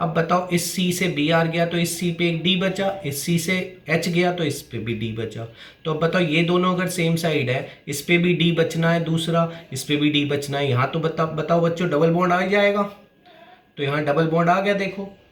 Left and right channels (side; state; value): both; identical; correlation 1.00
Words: बताओ इस C से Br गया तो इस C पे एक D बचा, इस C से H गया तो इस पे भी D बचा। तो अब बताओ ये दोनों अगर सेम साइड है, इस पे भी D बचना है दूसरा, इस पे भी D बचना है, यहाँ तो बताओ बच्चों डबल बॉन्ड आ जाएगा, तो यहाँ डबल बॉन्ड आ गया देखो।